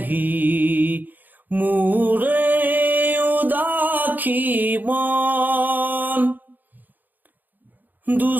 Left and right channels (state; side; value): late; left; 0.085 ms